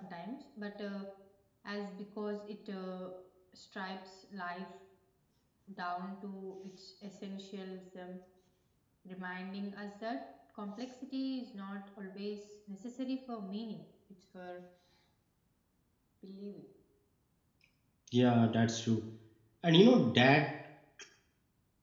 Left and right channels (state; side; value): identical; both; correlation 1.00